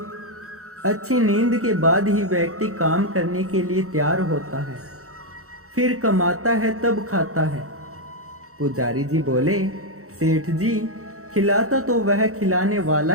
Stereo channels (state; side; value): late; left; 0.64 ms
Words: अच्छी नींद के बाद ही व्यक्ति काम करने के लिए तैयार होता है, फिर कमाता है तब खाता है। पुजारी जी बोले, सेठ जी, खिलाता तो वह खिलाने वाला